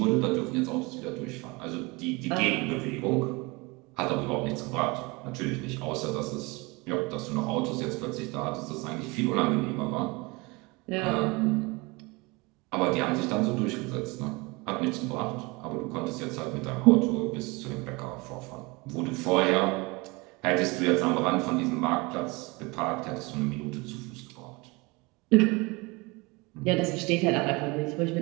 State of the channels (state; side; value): quieter; left; 25.7 dB